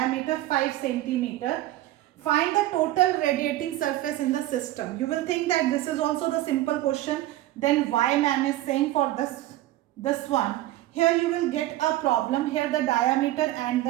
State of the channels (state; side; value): quieter; left; 15.6 dB